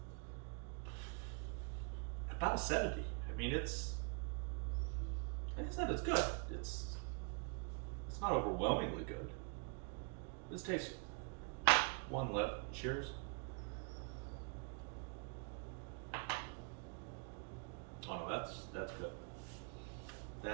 about a 70. I mean, it's, like I said, it's good. It's not overwhelmingly good. It's tasty. One left. Cheers. Oh no, that's good.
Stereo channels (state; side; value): quieter; left; 37.4 dB